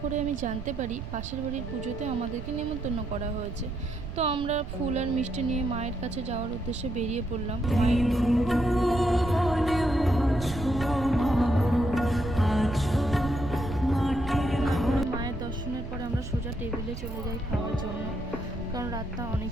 করে আমি জানতে পারি পাশের বাড়ির পুজোতে আমাদেরকে নেমন্তন্ন করা হয়েছে। তো আমরা ফুল আর মিষ্টি নিয়ে মায়ের কাছে যাওয়ার উদ্দেশ্যে বেরিয়ে পড়লাম। মায়ের দর্শনের পরে আমরা সোজা টেবিলে চলে যাই খাওয়ার জন্য, কারণ রাতটা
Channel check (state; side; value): noise; right; rumble, 9 dB below the sound